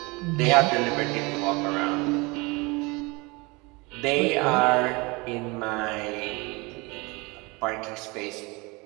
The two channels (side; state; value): left; quieter; 26.0 dB